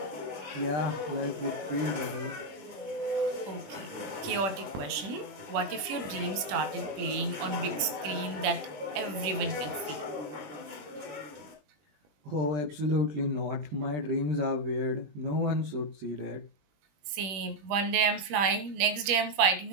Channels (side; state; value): left; late; 21 ms